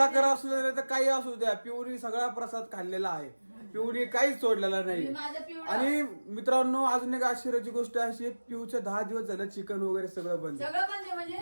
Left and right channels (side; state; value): both; inverted; correlation -1.00